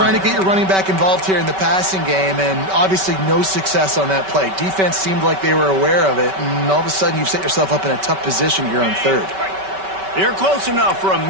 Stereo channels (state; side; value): late; left; 5.2 ms